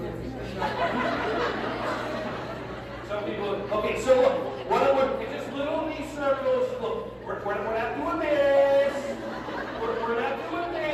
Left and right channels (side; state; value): both; identical; correlation 1.00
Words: Some people, okay, so look, what I want, just little knee circles. Look, we're not doing this. We're not doing